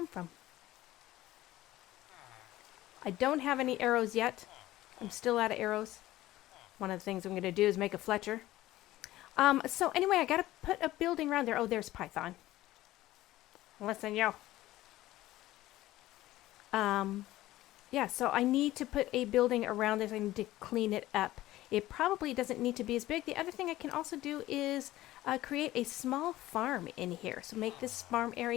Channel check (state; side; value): quieter; right; 15.9 dB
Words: from? I don't have any arrows yet. I'm still out of arrows. One of the things I'm going to do is make a Fletcher. So anyway, I got to put a building around there. Oh, there's Python. Listen, yo. Yeah, so I need to put a building around this. I need to clean it up. it probably doesn't need to be as big. The other thing I can also do is create a small farm in here. So make this farm